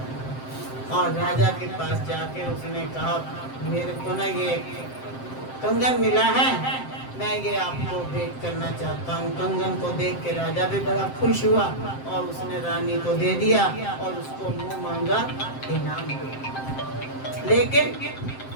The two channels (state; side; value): late; right; 7.6 ms